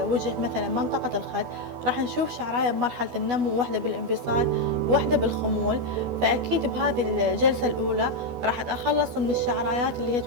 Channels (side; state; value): left; late; 12 ms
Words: مثلا منطقة الخد، راح نشوف شعراية بمرحلة النمو وواحدة بالانفصال وواحدة بالخمول. فأكيد بهذه الجلسة الأولى راح أتخلص من الشعرايات اللي هي